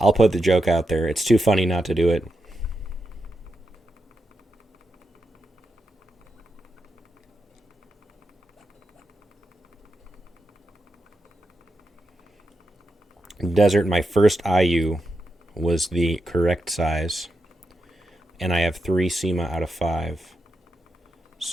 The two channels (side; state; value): both; normal; correlation 0.87